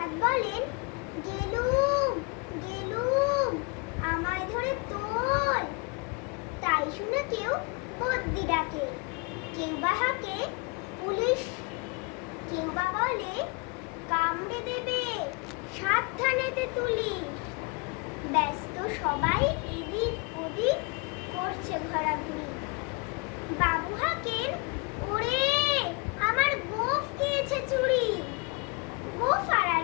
বলেন, গেলুম গেলুম, আমায় ধরে তোল। তাই শুনে কেউ বদ্যি ডাকে, কেউ বা হাঁকে পুলিশ, কেউ বা বলে কামড়ে দেবে, সাবধানেতে তুলি। ব্যস্ত সবাই এদিক ওদিক করছে ঘোরাঘুরি। বাবু হাঁকেন, ওরে আমার গোঁফ খেয়েছে চুরি। গোঁফ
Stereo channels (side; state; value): right; quieter; 30.8 dB